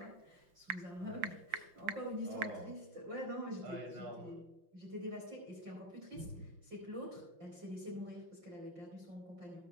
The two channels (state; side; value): late; left; 5.8 ms